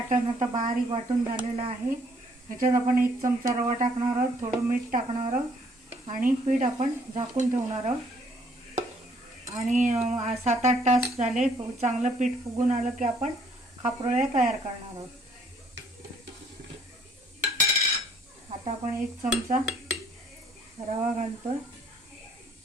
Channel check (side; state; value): both; normal; correlation 0.63